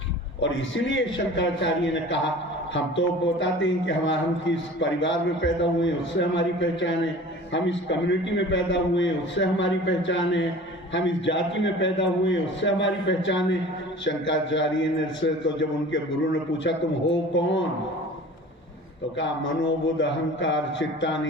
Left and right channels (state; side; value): normal; both; correlation 0.42